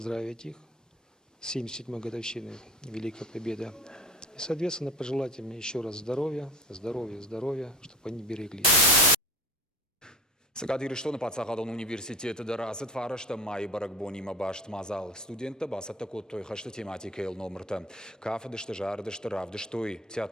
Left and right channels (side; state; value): both; normal; correlation 0.38